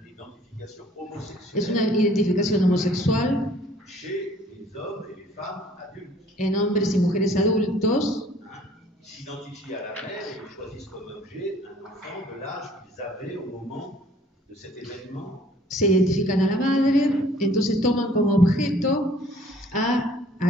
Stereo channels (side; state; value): both; normal; correlation 0.56